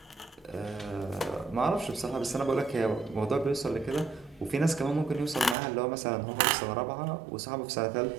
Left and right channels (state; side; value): drops out; left; at 5.6 s